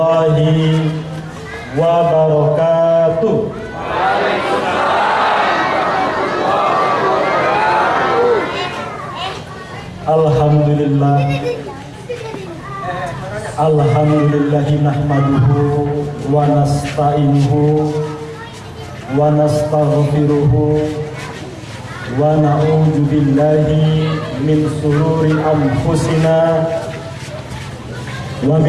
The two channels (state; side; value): identical; both; correlation 1.00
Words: wabarakatuh. Alhamdulillah, alhamdulillahi nahmaduhu wa nasta'inuhu wa nastaghfiruhu wa na'udzu billahi min sururi anfusina wa